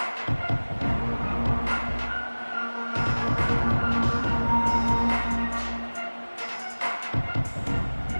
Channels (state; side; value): inverted; both; correlation -1.00